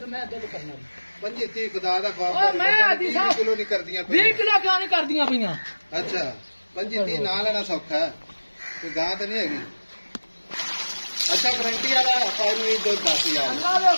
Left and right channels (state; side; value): inverted; both; correlation -1.00